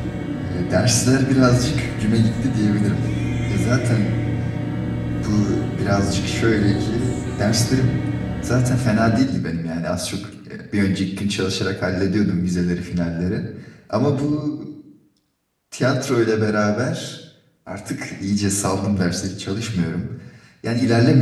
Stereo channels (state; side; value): identical; both; correlation 1.00